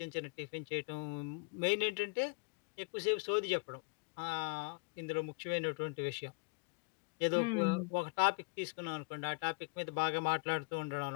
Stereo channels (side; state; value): right; quieter; 33.3 dB